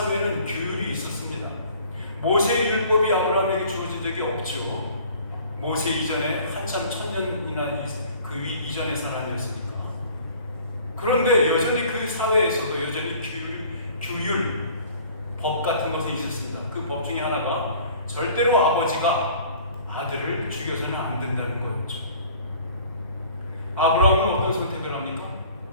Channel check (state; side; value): inverted; both; correlation -0.50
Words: 규율이 있었습니다. 모세의 율법이 아브라함에게 주어진 적이 없죠. 모세 이전에 한참 1000년이나 그 이전의 사람이었으니까. 그런데 여전히 그 사회에서도 여전히 규율, 법 같은 것이 있었습니다. 그 법 중에 하나가 절대로 아버지가 아들을 죽여서는 안 된다는 거였죠. 아브라함은 어떤 선택을 합니까?